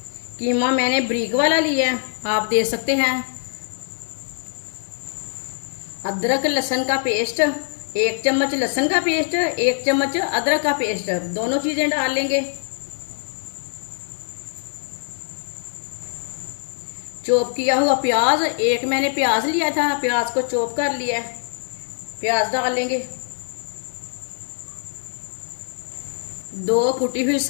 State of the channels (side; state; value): right; silent; digital silence